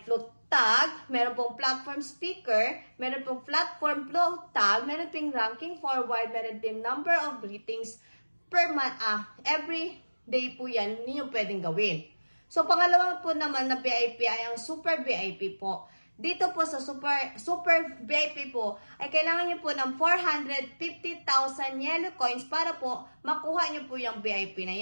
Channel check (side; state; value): both; inverted; correlation -1.00